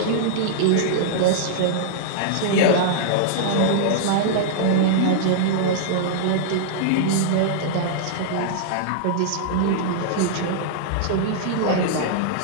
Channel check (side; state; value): both; different; correlation -0.02